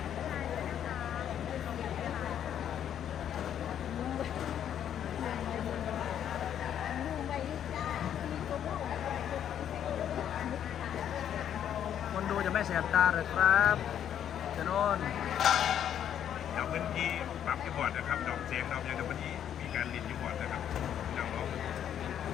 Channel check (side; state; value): right; quieter; 9.7 dB